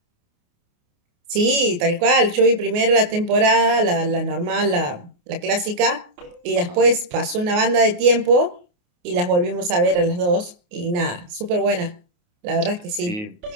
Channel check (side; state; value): left; late; 28 ms